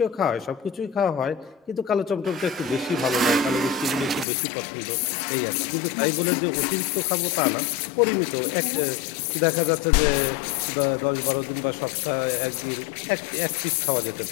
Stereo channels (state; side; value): drops out; right; at 4.2 s